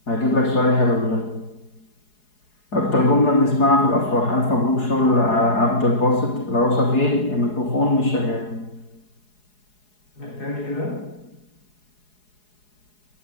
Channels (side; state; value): right; late; 4.8 ms